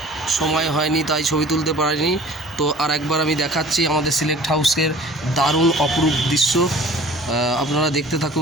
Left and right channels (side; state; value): both; normal; correlation 0.47